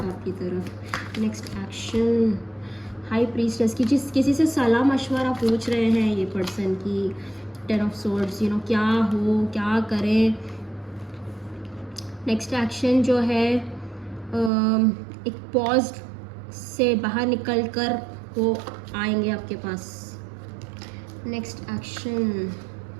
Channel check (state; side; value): drops out; left; at 14.5 s